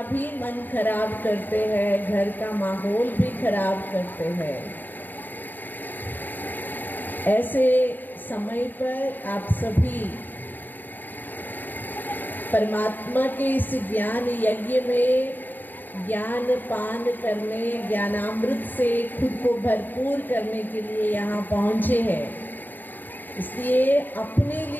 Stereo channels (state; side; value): late; right; 0.090 ms